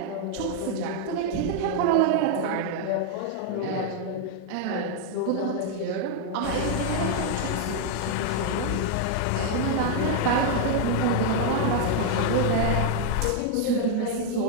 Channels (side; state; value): both; different; correlation 0.00